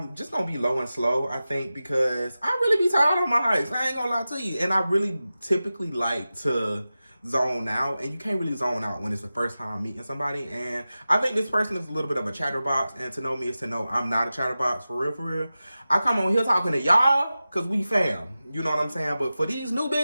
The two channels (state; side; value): inverted; both; correlation -0.94